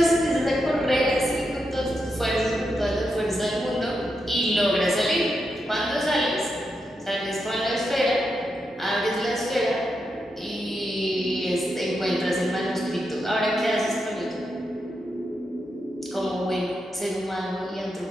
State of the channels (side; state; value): both; normal; correlation 0.85